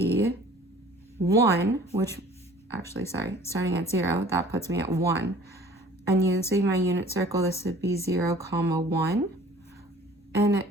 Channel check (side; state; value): both; normal; correlation 0.49